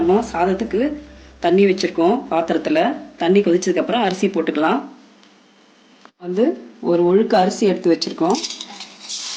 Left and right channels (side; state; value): both; identical; correlation 1.00